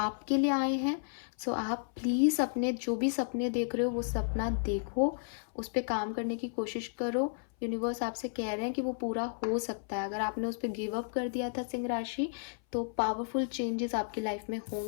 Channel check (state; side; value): silent; right; 56 dB below the other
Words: लिए आए हैं। सो आप प्लीज़ अपने जो भी सपने देख रहे हो, वो सपना देखो, उस पर काम करने की कोशिश करो। यूनिवर्स आपसे कह रहे हैं कि वो पूरा हो सकता है। अगर आपने उस पर गिव अप कर दिया था सिंह राशि, तो पावरफुल चेंजेस आपकी लाइफ में